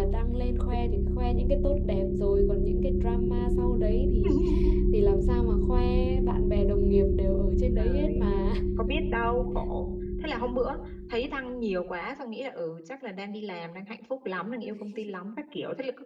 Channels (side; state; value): both; identical; correlation 1.00